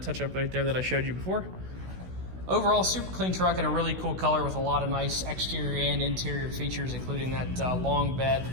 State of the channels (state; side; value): late; left; 16 ms